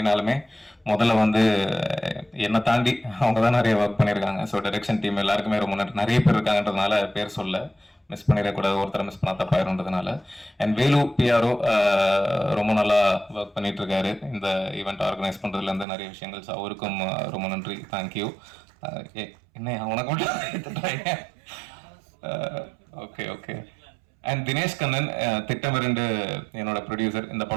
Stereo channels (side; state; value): left; drops out; at 15.9 s